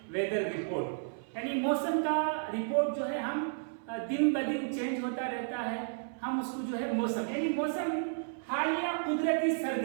वेदर रिपोर्ट, यानी मौसम का रिपोर्ट जो है हम दिन ब दिन चेंज होता रहता है। हम उसको जो है मौसम यानी मौसम हालिया कुदरती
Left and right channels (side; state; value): left; silent; 56 dB below the other